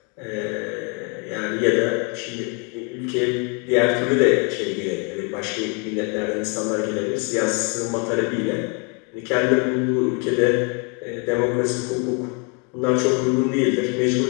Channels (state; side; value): quieter; right; 33.7 dB